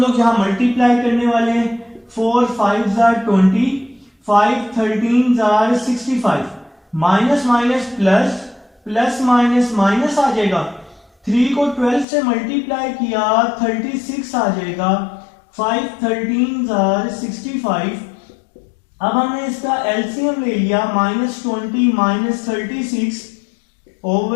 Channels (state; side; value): drops out; right; at 12.1 s